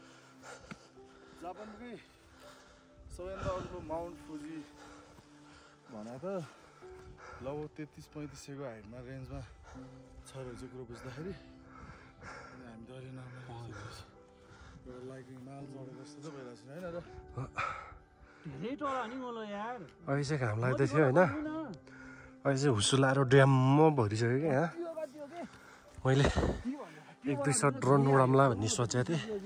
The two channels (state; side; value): identical; both; correlation 1.00